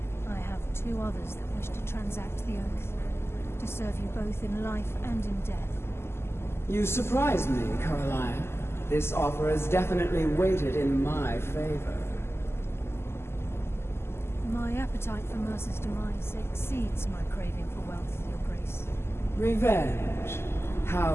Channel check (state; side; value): late; right; 0.12 ms